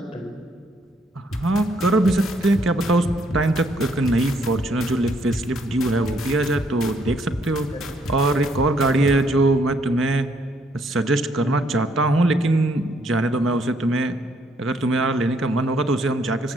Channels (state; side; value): normal; both; correlation 0.69